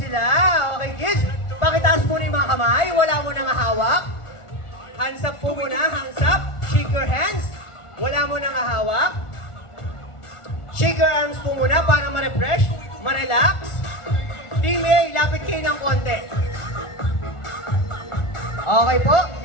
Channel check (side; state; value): right; late; 1.4 ms